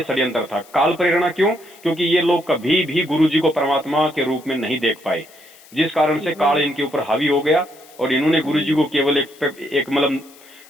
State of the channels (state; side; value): noise; left; hiss, 24 dB below the sound